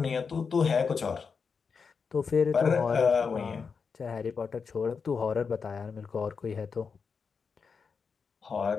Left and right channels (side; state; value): right; quieter; 5.6 dB